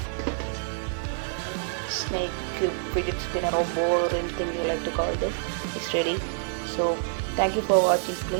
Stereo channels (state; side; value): silent; left; digital silence